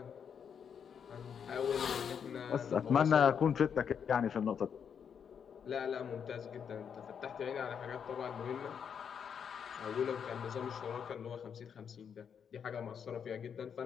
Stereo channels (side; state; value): right; quieter; 7.4 dB